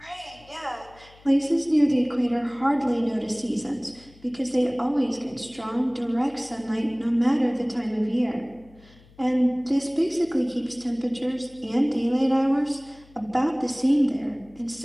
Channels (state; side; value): noise; left; hum, 26 dB below the sound